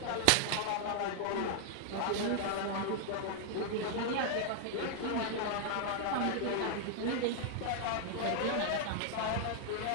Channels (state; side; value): different; both; correlation -0.01